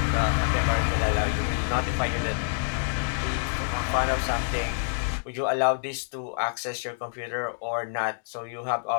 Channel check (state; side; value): silent; right; digital silence